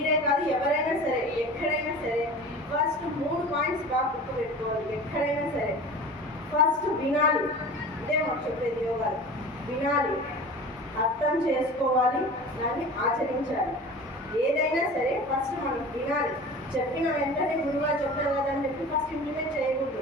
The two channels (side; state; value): both; normal; correlation 0.37